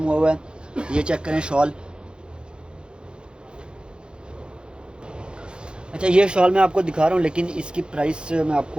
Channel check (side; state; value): left; late; 0.051 ms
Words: हुआ है। ये चेक करें शॉल। अच्छा, ये शॉल मैं आपको दिखा रहा हूँ, लेकिन इसकी प्राइस मैं